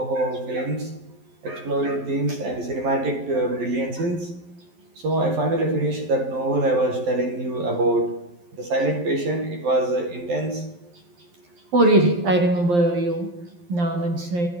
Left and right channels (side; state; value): left; late; 11 ms